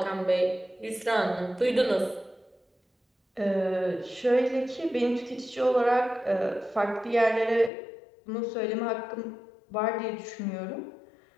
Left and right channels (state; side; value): drops out; right; at 7.7 s